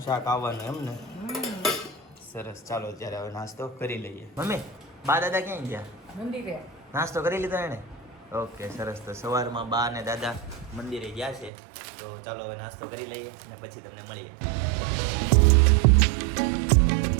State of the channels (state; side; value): drops out; left; at 11.5 s